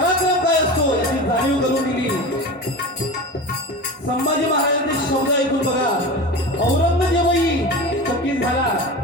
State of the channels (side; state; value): both; normal; correlation 0.29